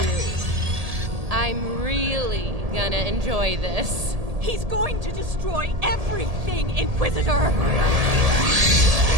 I'm really gonna enjoy this. He's going to destroy everything, Inquisitor!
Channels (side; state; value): left; late; 1.8 ms